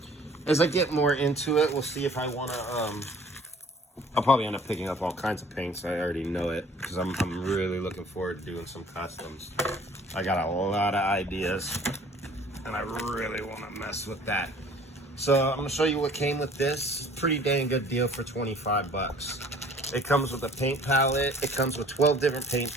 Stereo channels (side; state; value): both; normal; correlation 0.52